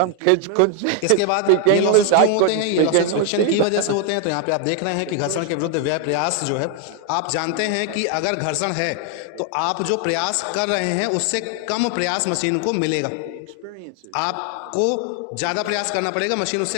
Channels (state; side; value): different; both; correlation 0.00